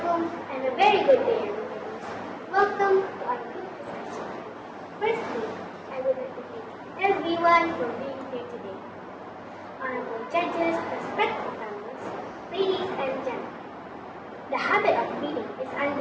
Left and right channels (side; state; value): both; identical; correlation 1.00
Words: and a very good day everybody. Welcome to our group discussion. Firstly, I would like to thank everyone for being here today. Honorable judges, respected panelists, ladies and gentlemen. The habit of reading is